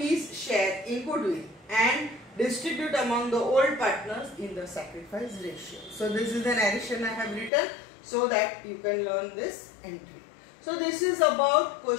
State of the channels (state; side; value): drops out; right; at 7.5 s